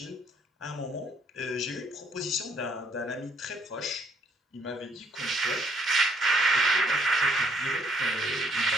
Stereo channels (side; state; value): both; normal; correlation 0.67